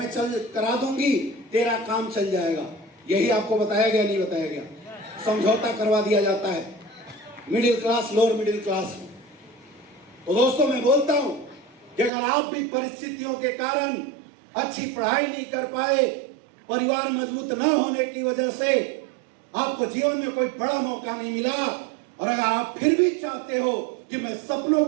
करा दूंगी, तेरा काम चल जाएगा। यही आपको बताया गया, नहीं बताया गया? समझौता करवा दिया जाता है middle class, lower middle class में। तो दोस्तों मैं बोलता हूं कि अगर आप भी परिस्थितियों के कारण अच्छी पढ़ाई नहीं कर पाए, परिवार मजबूत न होने की वजह से आपको जीवन में कोई बड़ा मौका नहीं मिला, और अगर आप फिर भी चाहते हो कि मैं सपनों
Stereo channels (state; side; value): drops out; left; at 12.1 s